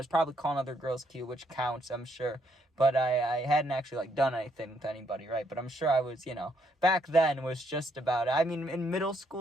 probably calling other girls cute, which counts, I'm sure. But I hadn't actually like done anything with anybody, right? But I'm sure I was, back then was just about it. I mean, in middle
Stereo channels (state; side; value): normal; both; correlation 0.73